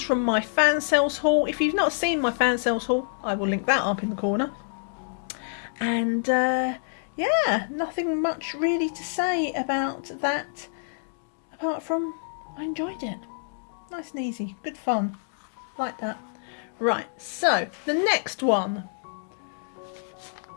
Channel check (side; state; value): right; silent; digital silence